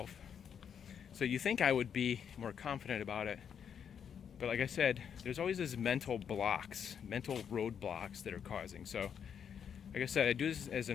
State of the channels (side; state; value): right; quieter; 7.8 dB